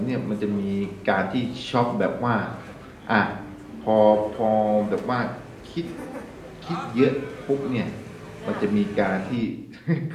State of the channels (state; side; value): identical; both; correlation 1.00